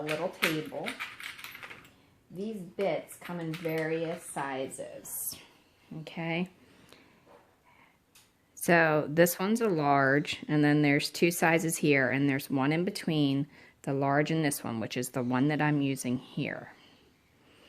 little table. These bits come in various sizes. Okay. So this one's a large, and then there's two sizes here, and there's one in between the large and this one, which is the one that I'm using here.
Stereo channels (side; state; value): both; identical; correlation 1.00